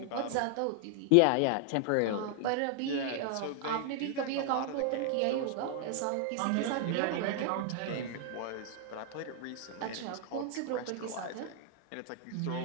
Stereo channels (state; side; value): different; both; correlation 0.00